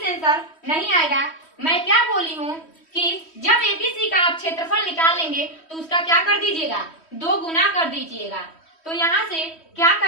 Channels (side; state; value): right; late; 3.1 ms